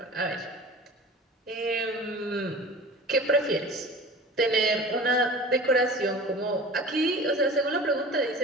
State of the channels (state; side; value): normal; both; correlation 0.38